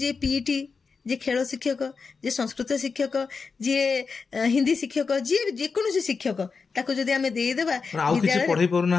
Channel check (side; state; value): right; quieter; 5.0 dB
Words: ପିଇଟି जे खेल शिक्षक, जे संस्कृत शिक्षक, जे हिंदी शिक्षक, जे जेकोसी शिक्षक ताको जदि आमे देई देबा विद्यालय पढ़ाई पारु